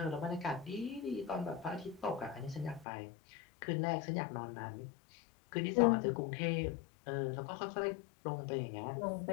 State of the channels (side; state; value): right; drops out; at 2.9 s